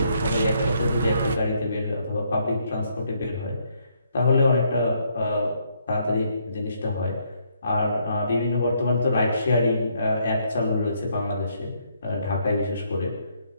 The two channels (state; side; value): inverted; both; correlation -0.72